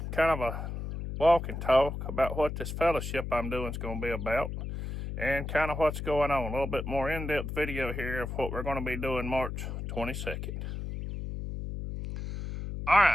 kind of a walk and talk about what this fellowship I'm doing is going to be about and kind of what's going on. A little bit more in-depth video here of what we're going to be doing March 22nd. All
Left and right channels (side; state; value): left; noise; hum, 5 dB below the sound